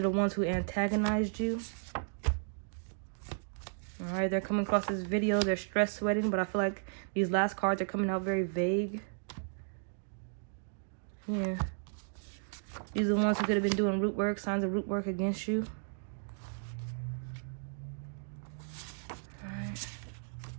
the ones who antagonized you. All right, they're coming across this video. They're stress sweating, but I feel like these last cards are coming out very vague. Yeah. These are the ones who could have been doing root work, signs of root work against you. All right.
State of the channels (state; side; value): silent; left; digital silence